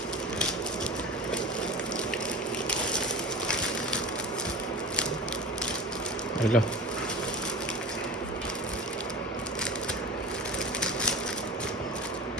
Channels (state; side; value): normal; both; correlation 0.34